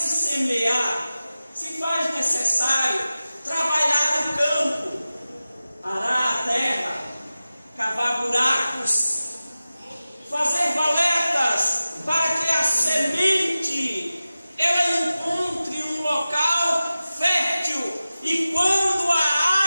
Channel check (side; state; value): both; inverted; correlation -0.95